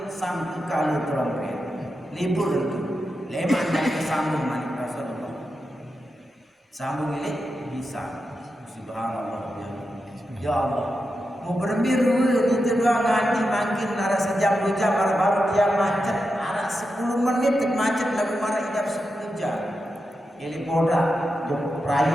sangku kali trompet libur itu. Leman dan kesambung manik Rasulullah. Sambung ini bisa. Subhanallah ya Allah. Mau berbiru itu doang nanti makin arah sejam 2 jam baru dia macet arah 10 menit macet lagu marah idap 10 jam. Ini poda jom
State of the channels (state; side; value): normal; both; correlation 0.89